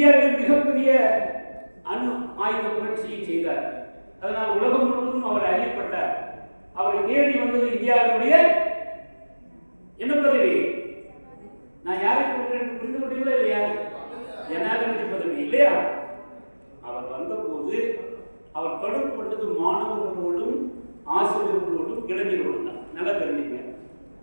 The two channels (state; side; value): inverted; both; correlation -1.00